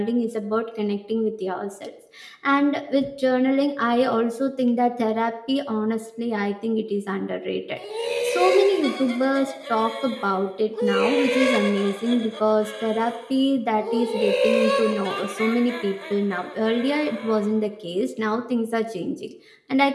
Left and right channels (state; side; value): identical; both; correlation 1.00